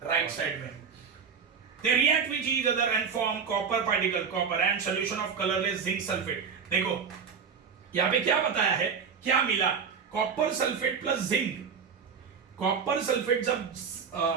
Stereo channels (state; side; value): quieter; left; 6.3 dB